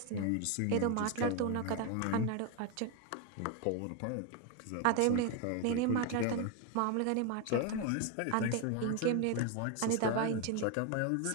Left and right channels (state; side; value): different; both; correlation 0.01